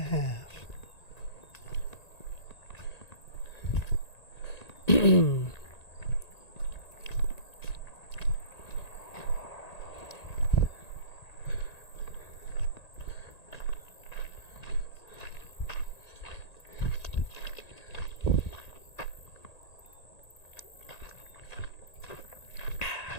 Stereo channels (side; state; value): right; late; 1.9 ms